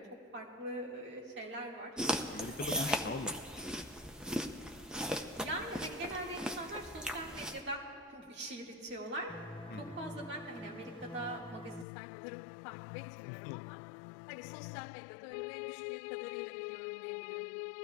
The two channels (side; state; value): right; drops out; at 11.9 s